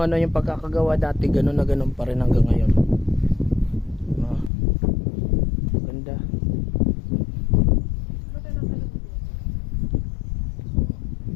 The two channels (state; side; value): drops out; right; at 4.5 s